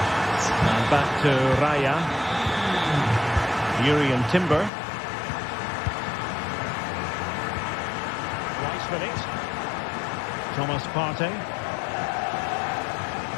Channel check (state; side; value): drops out; right; at 4.7 s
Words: Back to Raya. Urian Timber. Rice with it. Thomas Partey.